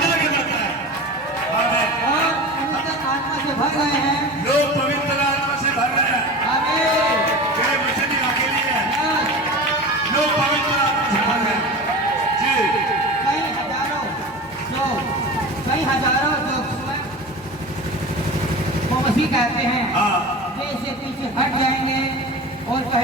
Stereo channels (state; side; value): normal; both; correlation 0.32